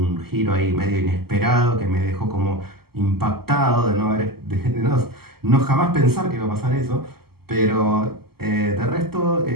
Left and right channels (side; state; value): left; late; 0.96 ms